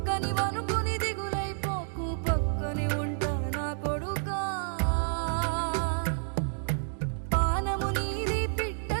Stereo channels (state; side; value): silent; left; digital silence